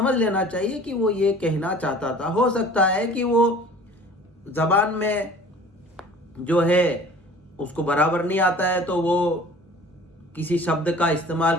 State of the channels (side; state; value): both; normal; correlation 0.46